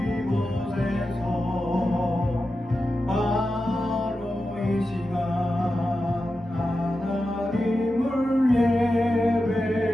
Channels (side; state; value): both; normal; correlation 0.91